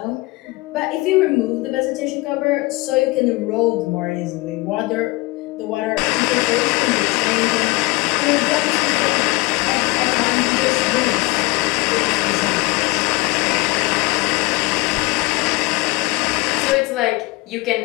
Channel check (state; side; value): quieter; right; 23.2 dB